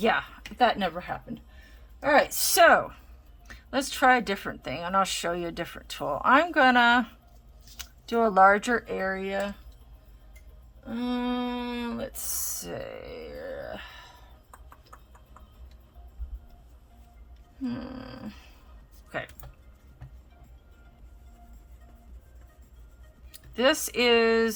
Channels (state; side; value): identical; both; correlation 1.00